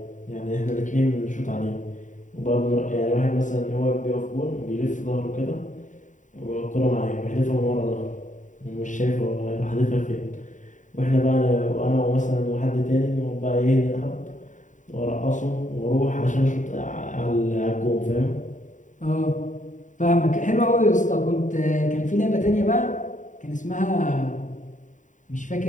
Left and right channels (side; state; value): right; late; 0.36 ms